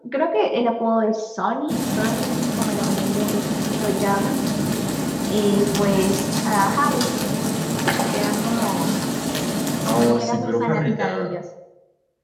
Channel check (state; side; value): identical; both; correlation 1.00